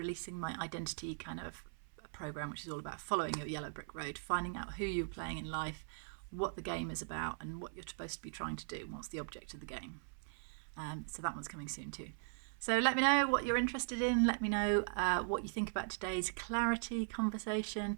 my identity kind of program, which is all about following your yellow brick road, finding out who you're playing in life, what the game is about, and what you're supposed to be trying to do, and what's the object of the game. So that one's coming soon too. So let me know what you're interested in. Let me know what you think about today's clarity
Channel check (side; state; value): left; silent; 51 dB below the other